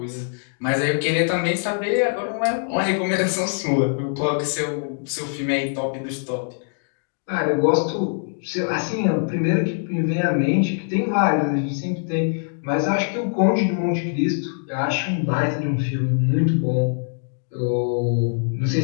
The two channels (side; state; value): right; silent; digital silence